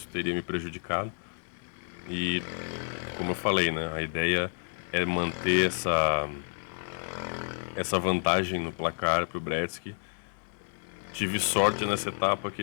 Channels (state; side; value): silent; right; 58 dB below the other